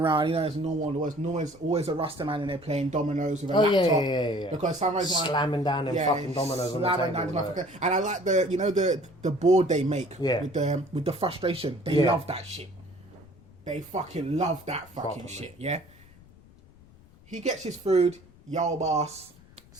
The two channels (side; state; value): left; noise; rumble, 25 dB below the sound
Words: around. You know, it's normal. There's always a Rasta man in there playing dominoes with a laptop. Yeah. Because sometimes slamming down them fucking dominoes on the table. And I like the board they make with the frustration. They love that shit. They fucking love that fucking shit. Yeah. He gets his food. Yo, boss.